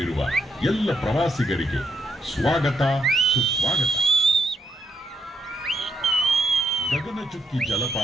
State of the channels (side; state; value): both; normal; correlation 0.77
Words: ಎಲ್ಲ ಪ್ರವಾಸಿಗರಿಗೆ ಸ್ವಾಗತ ಸುಸ್ವಾಗತ. ಗಗನಚುಕ್ಕಿ